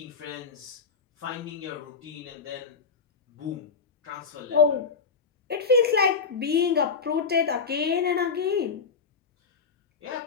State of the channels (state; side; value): quieter; right; 5.4 dB